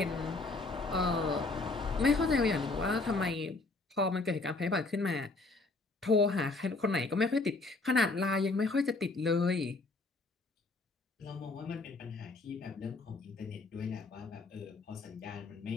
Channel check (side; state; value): right; quieter; 3.5 dB